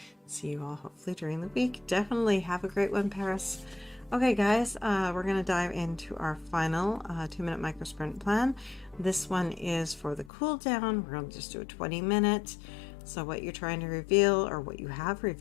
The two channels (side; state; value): right; drops out; at 10.3 s